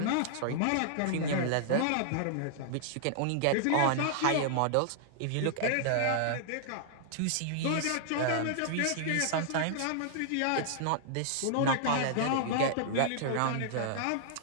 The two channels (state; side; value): different; both; correlation -0.01